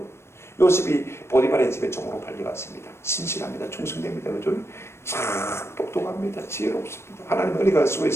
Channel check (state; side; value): late; right; 0.13 ms